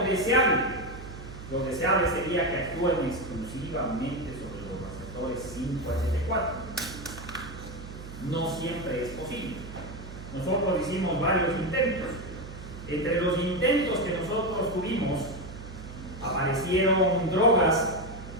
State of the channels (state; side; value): noise; right; hum, 12 dB below the sound